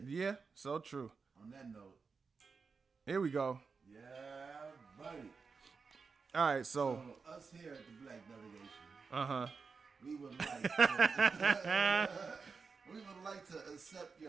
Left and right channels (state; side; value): quieter; left; 5.0 dB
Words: Yeah, so true. On that note. Here we go. Yeah, buddy. All right, so us here at the Black Delegation. Uh-huh. We would like to accept